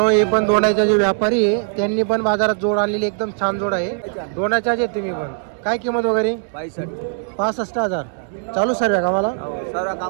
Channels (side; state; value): left; silent; digital silence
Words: हे पण दोण्याचे जे व्यापारी आहे त्यांनी पण बाजारात जोड आणलेली, एकदम छान जोड आहे. दोण्याच्या जे तुम्ही पण काय किंमत वगैरे 65,000 चालू सर्व कामाला